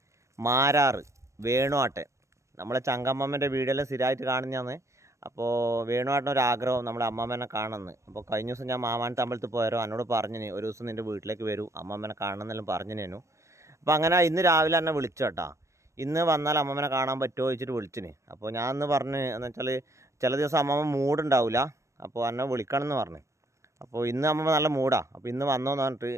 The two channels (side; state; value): left; late; 0.15 ms